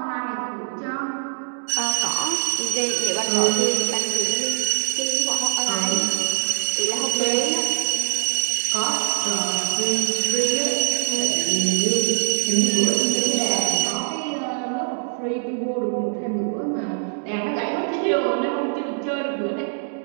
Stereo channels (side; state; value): left; silent; digital silence